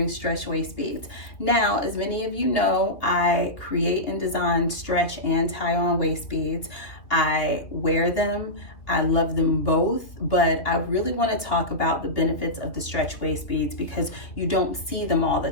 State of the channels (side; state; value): right; late; 2.6 ms